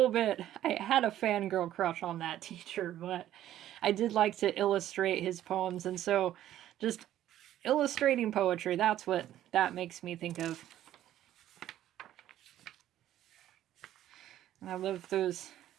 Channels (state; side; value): quieter; left; 12.5 dB